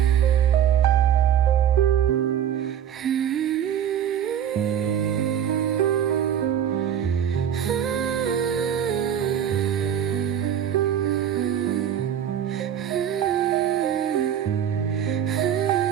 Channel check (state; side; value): quieter; left; 9.4 dB